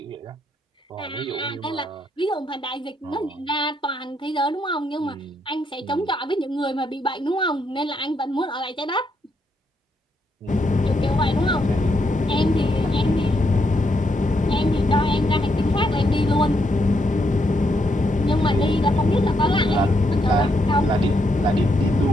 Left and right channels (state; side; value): normal; both; correlation 0.77